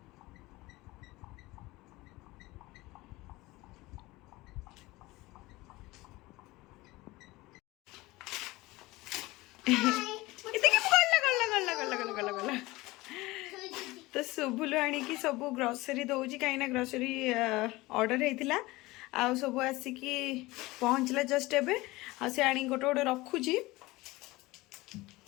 तो सुबुलु आनिकी सब ग्रोसरी दौची कहीं ग्रोसरी ऑर्डर होता आउ सब आसिकी पहुँचला जस्ट एबे आ से आनी गोटे गोटे रखुची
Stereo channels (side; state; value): right; quieter; 20.4 dB